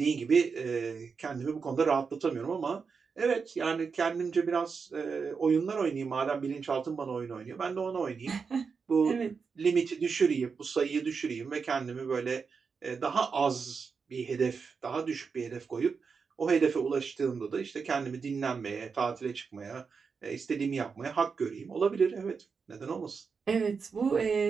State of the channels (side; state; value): left; quieter; 5.4 dB